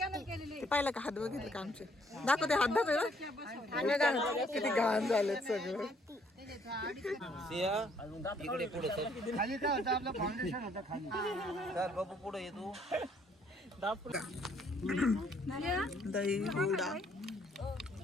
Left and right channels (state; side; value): normal; both; correlation 0.65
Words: पाहिलं का? हात बघितलं का आमचे? दाखव ते हात दाखव ना. किती घाण झालेत सगळं. इकडे पुढे खाली काय होतं आपलं फाउंडेशन होतं खाली. चल बाबू पुढे ये तू. दही, हुडा,